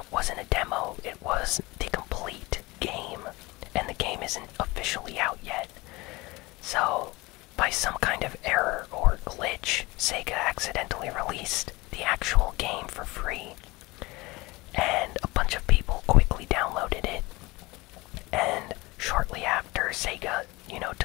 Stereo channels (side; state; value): right; quieter; 22.4 dB